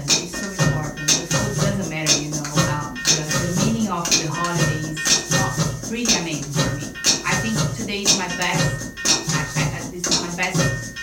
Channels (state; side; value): identical; both; correlation 1.00